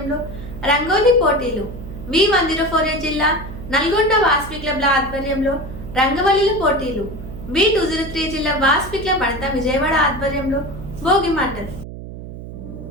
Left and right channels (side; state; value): right; noise; hum, 12 dB below the sound